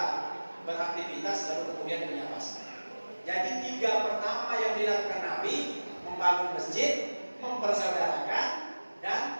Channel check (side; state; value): both; inverted; correlation -1.00